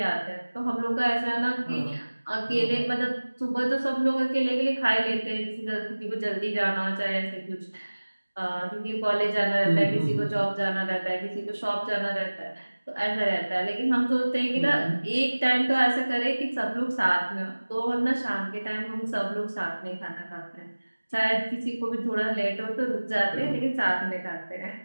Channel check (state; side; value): inverted; both; correlation -1.00